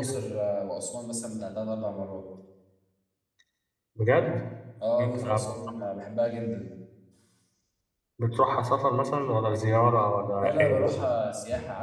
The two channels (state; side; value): identical; both; correlation 1.00